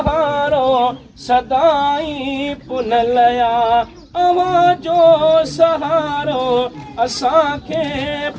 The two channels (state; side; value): identical; both; correlation 1.00